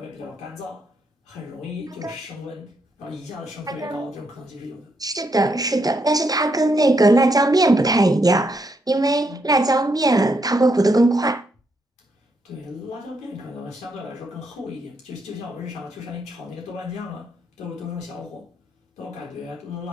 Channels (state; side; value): normal; both; correlation 0.77